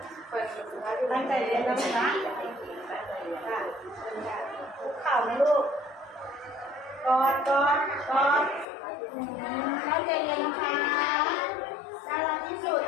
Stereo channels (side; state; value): right; drops out; at 8.7 s